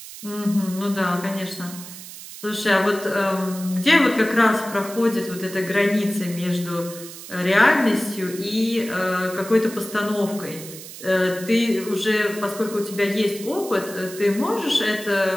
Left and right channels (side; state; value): right; noise; hiss, 14 dB below the sound